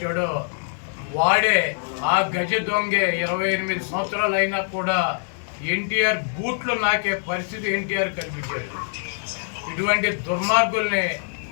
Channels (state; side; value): silent; right; digital silence